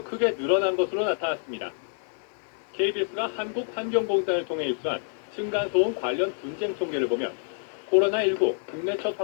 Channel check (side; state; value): right; silent; 58 dB below the other